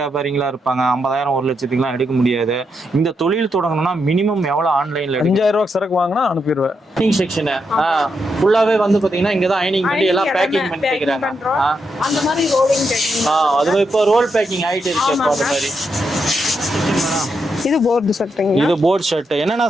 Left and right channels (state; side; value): normal; both; correlation 0.82